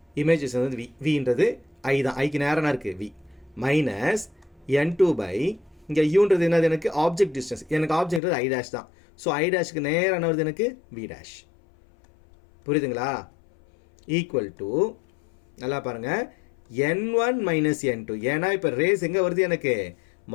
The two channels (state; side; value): drops out; right; at 8.2 s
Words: இமேஜ் வந்து Vன்றது ஐ தான். ஐக்கு நேராக இருக்குது V மைனஸ் N2 பை இங்கே யூன்றது என்னது, எனக்கு ஆப்ஜெக்ட் டிஸ்டன்ஸ். எனக்கு ஆப்ஜெக்ட் ஐ டேஷ் தான். ஸோ ஐ டேஷுக்கு நேராக என்ன வருது, எனக்கு V டேஷ். புரியுதுங்களா? ஈக்குவல் டு நல்லா பாருங்கள், N1 மைனஸ் N2. ஏன்னா இப்போ ரேஸ் எங்கே வருது, எனக்கு